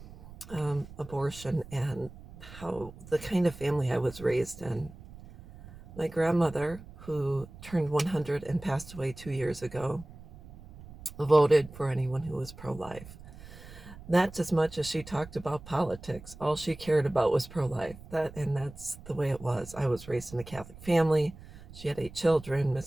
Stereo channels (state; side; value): noise; right; rumble, 17 dB below the sound